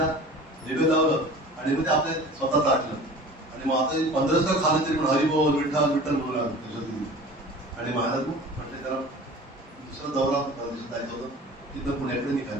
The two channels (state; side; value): normal; both; correlation 0.40